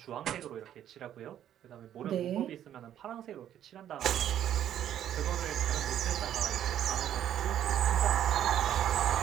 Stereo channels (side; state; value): left; quieter; 10.7 dB